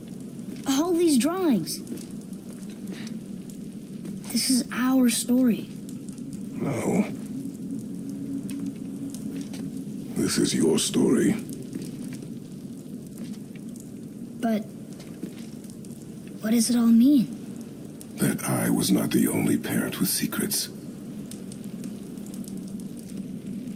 all these drawings. This is our story. No. This is your story. But what does it all mean? That I was not the only parent with secrets.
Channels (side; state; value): both; identical; correlation 1.00